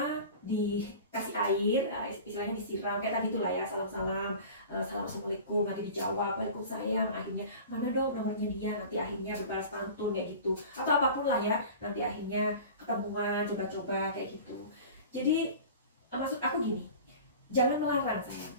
dikasih air, istilahnya disiram kayak tadi itulah ya, salam-salam, salam assalamualaikum, nanti dijawab waalaikumsalam, akhirnya mana dong nomornya dia, nanti akhirnya berbalas pantun kayak gitu, atau apapun lah ya, nanti akhirnya ketemuan, coba-coba kayak gitu. Jadi maksud aku gini, jangan melarang sayang,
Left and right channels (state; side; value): inverted; both; correlation -0.38